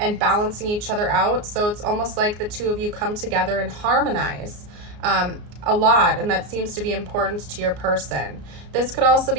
balancing each other out. So it's almost like the two of you come together and harmonize a lot, and that seems to be important to your person. This could also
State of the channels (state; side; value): late; left; 34 ms